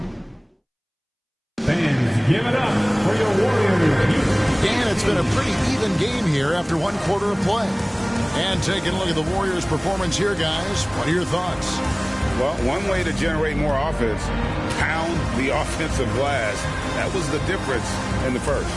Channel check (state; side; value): identical; both; correlation 1.00